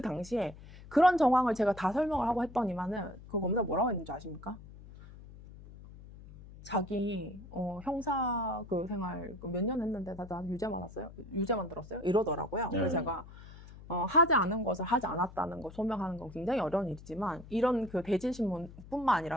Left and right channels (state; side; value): noise; left; hum, 17 dB below the sound